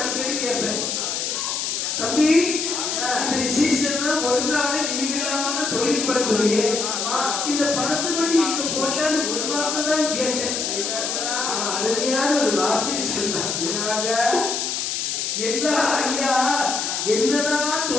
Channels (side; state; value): left; noise; hiss, 1 dB below the sound